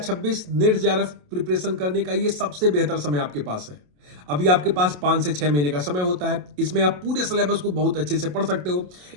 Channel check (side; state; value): left; late; 27 ms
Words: net JRF preparation करने का ये सबसे बेहतर समय आपके पास है। अभी आपके पास 5 से 6 महीने का समय होता है। इसमें आप पूरे सिलेबस को बहुत अच्छे से पढ़ सकते हो।